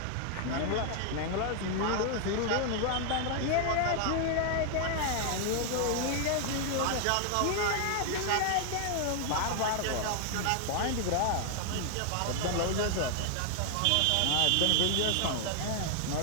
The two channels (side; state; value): both; different; correlation 0.00